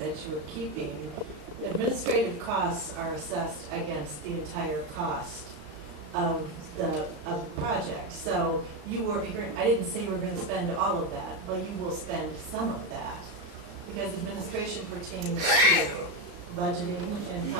you're keeping, administrative costs are assessed against the entire cost of the project. So I didn't say you were going to spend all of that, but you will spend some of that, because administration pertains to budgeting and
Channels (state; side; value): late; left; 35 ms